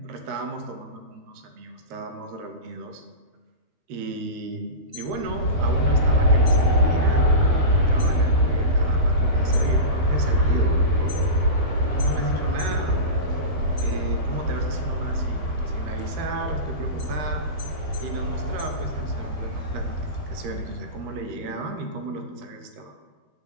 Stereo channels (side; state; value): left; late; 13 ms